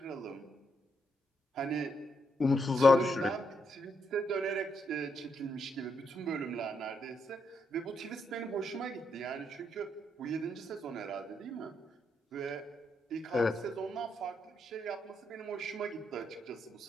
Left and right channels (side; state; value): both; normal; correlation 0.78